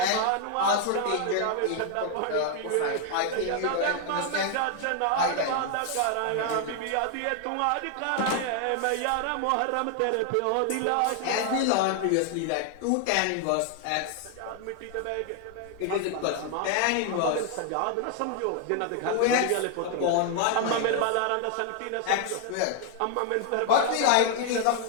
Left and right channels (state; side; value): different; both; correlation 0.00